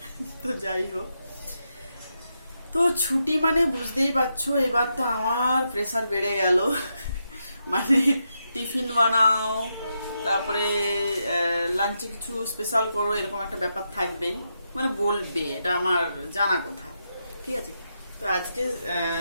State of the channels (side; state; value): both; inverted; correlation -0.84